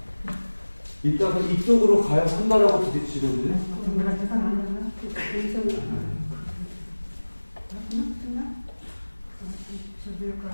이따가 이쪽으로 가야 한다라고 부딪히거든요.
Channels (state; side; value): inverted; both; correlation -1.00